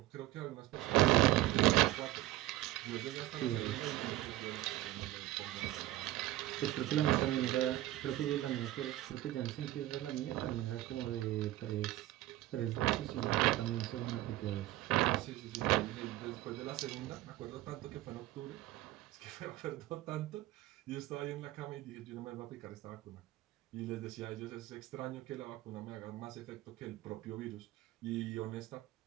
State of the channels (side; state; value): left; quieter; 15.9 dB